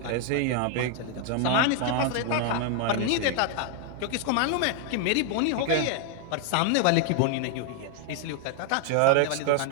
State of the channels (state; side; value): different; both; correlation 0.00